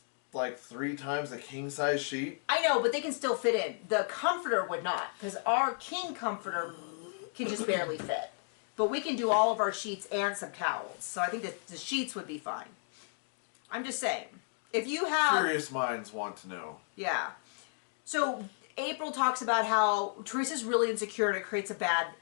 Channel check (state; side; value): silent; right; 56 dB below the other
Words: like 3 times a king-size sheet? I know, but they can still fit in. The comforter would not, because our king comforter can just barely fit. But we can do all of our sheets and some towels. So I think that the sheets would be fine. I'm just saying. If you have... Curious minds want to know. Yeah. So April talks about how Teresa's really insecure and it creates a bad